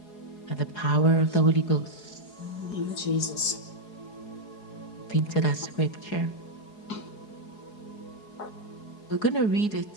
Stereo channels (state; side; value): late; right; 4.8 ms